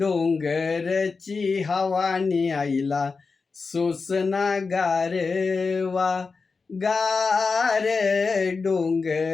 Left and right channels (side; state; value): right; quieter; 4.5 dB